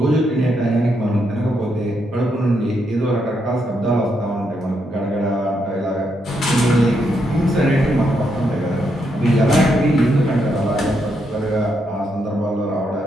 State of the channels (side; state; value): both; normal; correlation 0.79